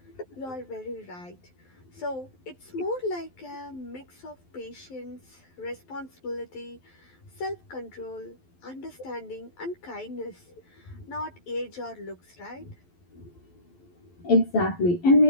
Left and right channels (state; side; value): late; right; 11 ms